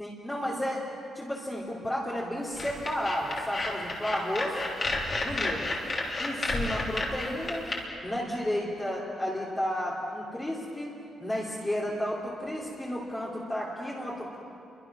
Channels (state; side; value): normal; both; correlation 0.88